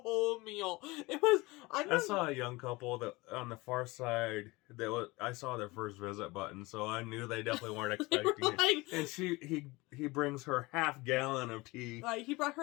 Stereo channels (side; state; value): right; quieter; 22.6 dB